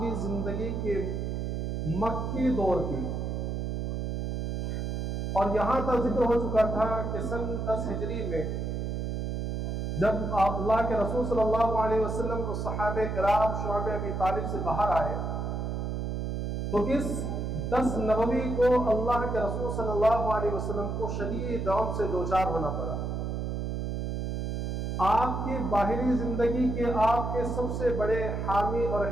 زندگی کے مکی دور کی. اور یہاں تک ذکر ہو چکا تھا کہ سن 10 ہجری میں جب اللہ کے رسول صلی اللہ علیہ وسلم کو صحابہ کرام شعب ابی طالب سے باہر آئے تو اس 10 نبوی کو اللہ کے رسول صلی اللہ علیہ وسلم کو شدید غم سے دوچار ہونا پڑا. آپ کی باہری زندگی کے آپ کے سب سے بڑے حامی اور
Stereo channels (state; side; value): noise; right; hum, 2 dB below the sound